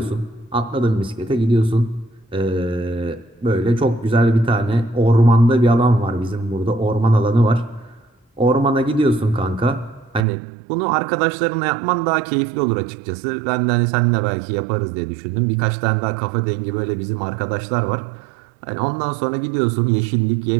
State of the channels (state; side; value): drops out; left; at 10.2 s